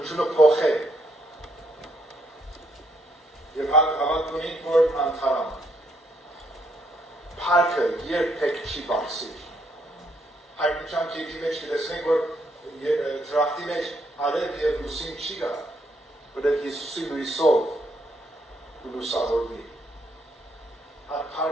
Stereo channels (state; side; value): normal; both; correlation 0.73